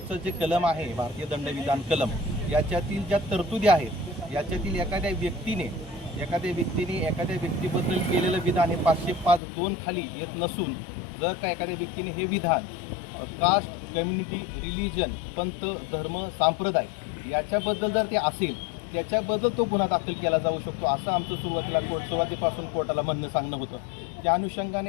जे कलम आहे भारतीय दंडविधान कलम याच्यातील ज्या तरतुदी आहेत याच्यातील एखाद्या व्यक्तीने एखाद्या व्यक्तीबद्दल केलेलं विधान हे 505(2) खाली येत नसून जर का एखाद्या व्यक्तीने हे विधान कास्ट, कम्युनिटी, रिलिजन, पंथ, धर्म, संप्रदाय याच्याबद्दल जर ते असेल त्याच्याबद्दल तो गुन्हा दाखल केला जाऊ शकतो असं आमचं सुरुवातीपासून कोर्टाला म्हणणं सांगणं होतं. त्या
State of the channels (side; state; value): right; drops out; at 9.4 s